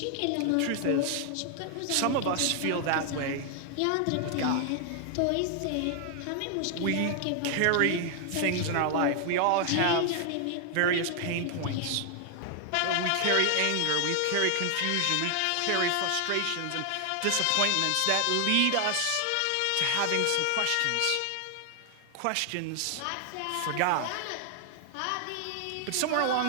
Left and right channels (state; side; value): different; both; correlation 0.00